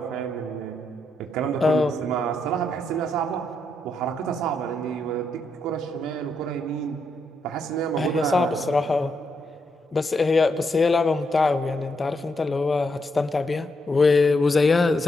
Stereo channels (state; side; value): normal; both; correlation 0.80